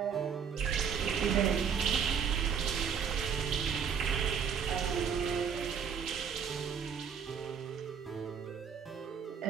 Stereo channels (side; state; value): left; quieter; 7.1 dB